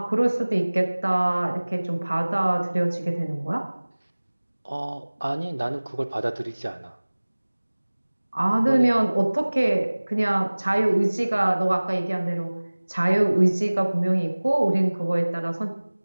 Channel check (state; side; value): inverted; both; correlation -1.00